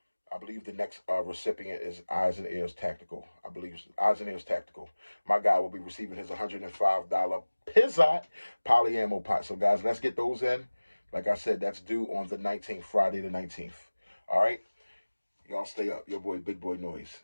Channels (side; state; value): both; inverted; correlation -1.00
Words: I believe the next recipient is Eyes and Ears Tactical. I believe Eyes and Ears Tactical. My guy will be receiving his $105 Pizzot polyammo pot. So guys, let's get those in. Like I said, that's due on the 19th, Friday the 19th. All right? Y'all stay up. Your boy, Big Boy Noise.